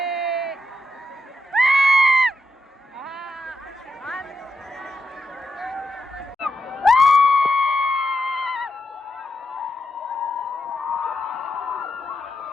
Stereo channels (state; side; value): normal; both; correlation 0.85